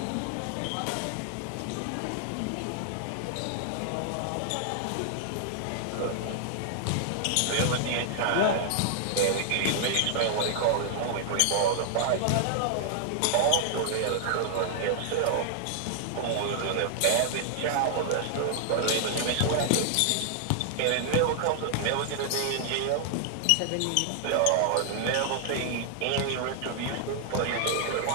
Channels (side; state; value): both; different; correlation -0.01